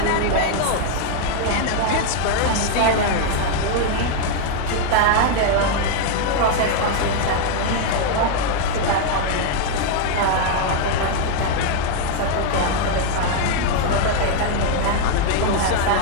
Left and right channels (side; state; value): both; different; correlation 0.00